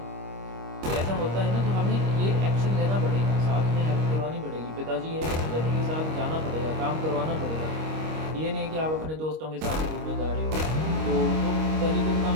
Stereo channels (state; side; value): late; left; 25 ms